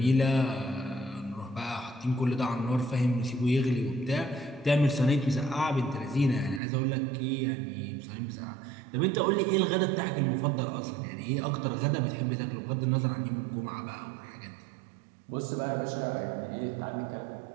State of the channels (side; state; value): left; drops out; at 6.6 s